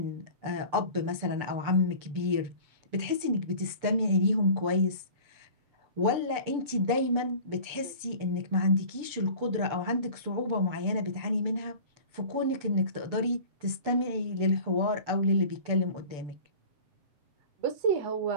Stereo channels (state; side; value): late; left; 6.9 ms